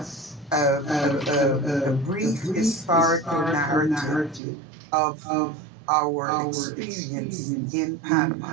a brief historical narrative of our experience in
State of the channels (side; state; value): left; drops out; at 4.4 s